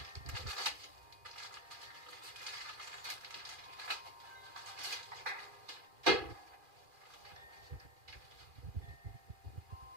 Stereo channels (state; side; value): late; left; 2.4 ms